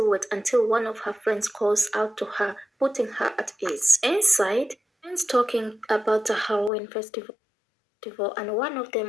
until one of her friends calls out to her, putting her at ease. Inside, friends talking about the Halloween festival, and one of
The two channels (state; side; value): drops out; right; at 6.7 s